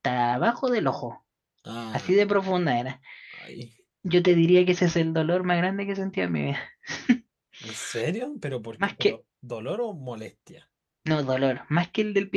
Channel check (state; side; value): identical; both; correlation 1.00